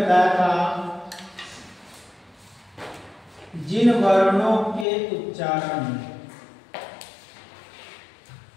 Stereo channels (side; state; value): right; drops out; at 4.9 s